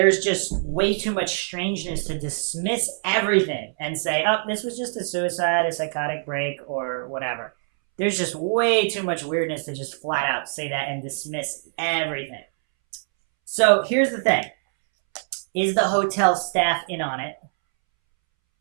just way too much strangeness to dismiss everything and say, oh, this was just a suicide, a psychotic break, or whatever. There's just way too much weirdness to just flat out say that and dismiss everything. So here's the thing. Is the hotel staff in on it?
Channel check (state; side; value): silent; left; 63 dB below the other